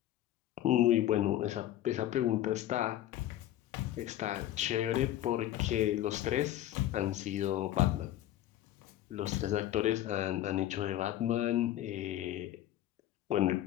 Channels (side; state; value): right; quieter; 13.1 dB